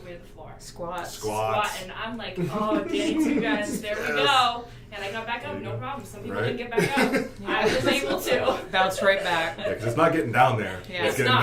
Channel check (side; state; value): both; identical; correlation 1.00